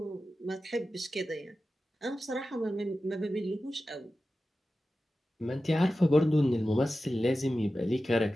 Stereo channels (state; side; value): normal; both; correlation 0.94